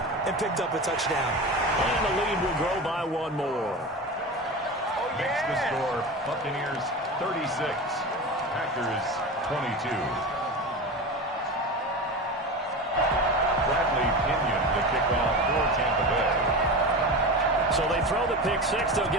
and picked up a touchdown. And the lead will grow by one more. Makes the score Buccaneers 36, Packers 22. Bradley Pinion the kickoff for Tampa Bay. So they throw the pick six. They'll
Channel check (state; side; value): normal; both; correlation 0.27